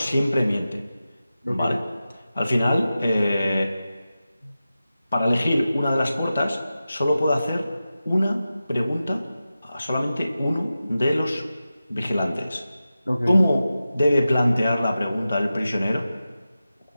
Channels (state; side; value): inverted; both; correlation -0.93